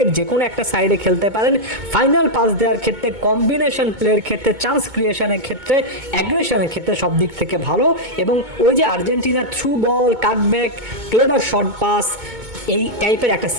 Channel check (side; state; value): left; late; 2.2 ms